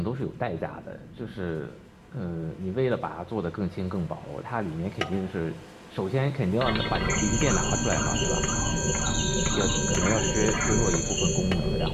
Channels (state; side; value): identical; both; correlation 1.00